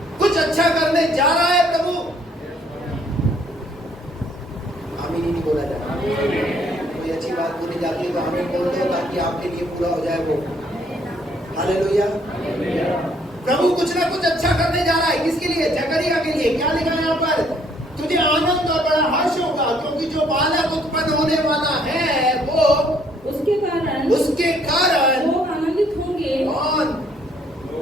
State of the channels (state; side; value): normal; both; correlation 0.65